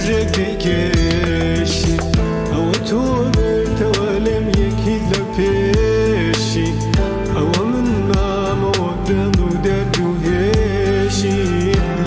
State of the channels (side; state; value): both; identical; correlation 1.00